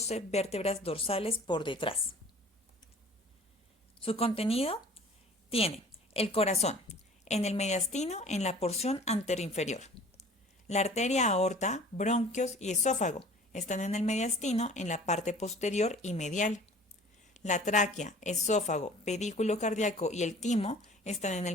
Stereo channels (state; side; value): normal; both; correlation 0.47